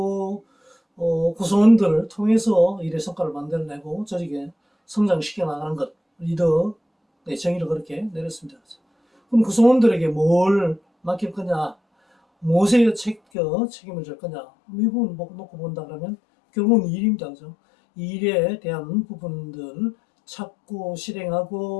구성원들을 통해서 일의 성과를 만들어내고 조직에 성장시켜 나가는 것, 리더의 정의를 그렇게 내렸습니다. 그럼 구성원들에게 뭘 맡길 거냐, 무엇에 책임을 질 거냐, 이 부분을 놓고 본다 그러면 결국은 일입니다. 그죠? 이 일에 대한 부분들 찾고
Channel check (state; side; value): drops out; right; at 13.2 s